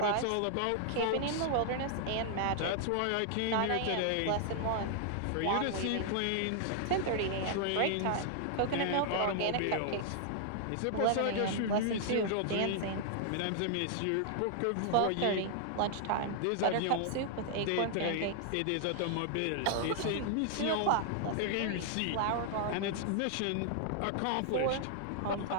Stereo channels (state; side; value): different; both; correlation -0.01